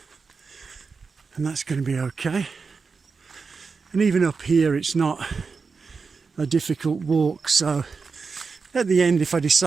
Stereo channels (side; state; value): left; quieter; 4.9 dB